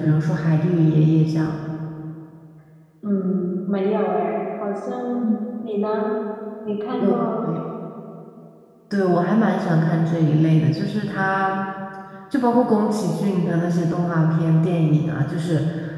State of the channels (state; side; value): identical; both; correlation 1.00